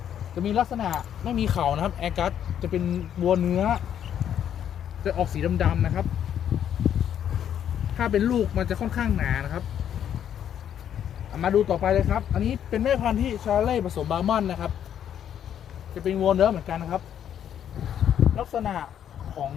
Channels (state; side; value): quieter; right; 9.6 dB